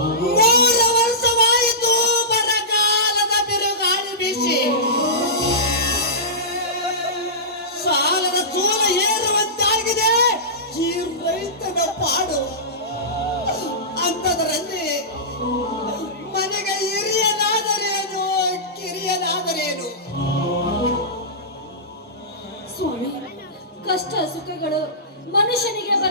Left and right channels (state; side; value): normal; both; correlation -0.18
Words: 3 ವರ್ಷವಾಯಿತು ಬರಗಾಲದ ಬಿರುಗಾಳಿ ಬೀಸಿ ಸಾಲದ ಸೂಲ ಏರುವಂತಾಗಿದೆ ಈ ರೈತನ ಪಾಡು. ಅಂಥದರಲ್ಲಿ ಮನೆಗೆ ಹಿರಿಯನಾದರೇನು, ಕಿರಿಯನಾದರೇನು? ಸ್ವಾಮಿ, ಕಷ್ಟ ಸುಖಗಳು ಮನುಷ್ಯನಿಗೆ